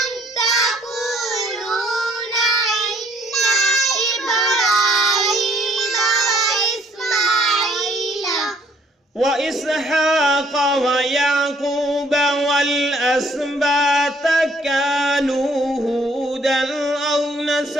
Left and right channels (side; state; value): both; normal; correlation 0.62